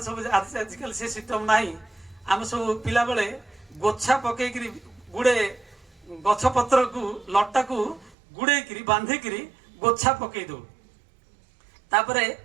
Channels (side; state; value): left; drops out; at 8.2 s